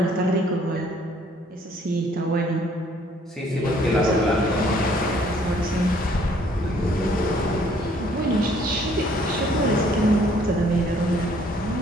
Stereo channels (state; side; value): normal; both; correlation 0.61